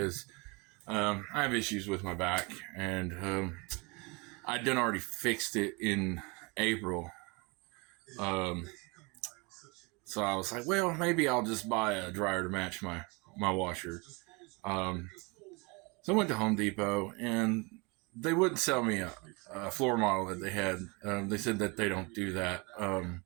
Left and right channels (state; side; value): quieter; left; 28.3 dB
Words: I have issues with my back, and I'd done already fixed it in April. Um, so I was like, well, maybe I'll just buy a dryer to match my washer. Um, so I went to Home Depot, and they wouldn't sell me a floor model that they had. They said that they don't do that,